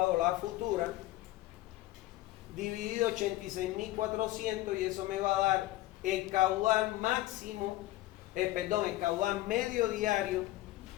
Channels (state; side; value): quieter; right; 16.9 dB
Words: la futura, dividido 86.400, y eso me va a dar el caudal máximo, el caudal medio diario